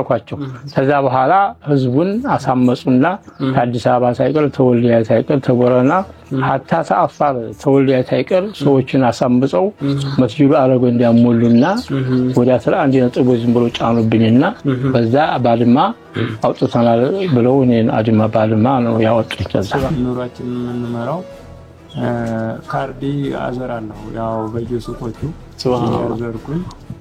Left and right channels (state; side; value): identical; both; correlation 1.00